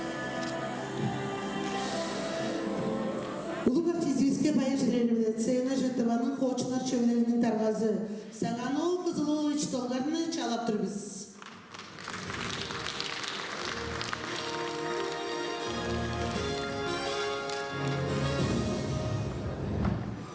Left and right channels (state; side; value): identical; both; correlation 1.00